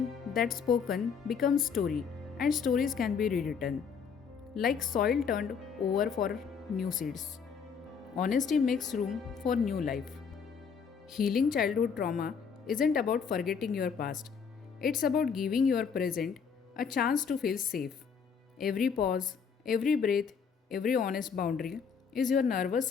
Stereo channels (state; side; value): quieter; right; 6.3 dB